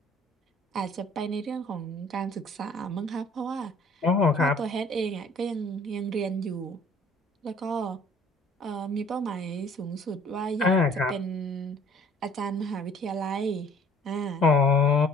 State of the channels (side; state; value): both; normal; correlation 0.54